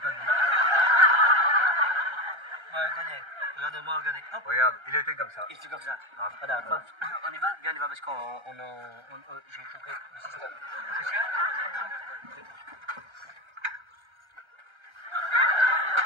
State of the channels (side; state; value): left; late; 1.3 ms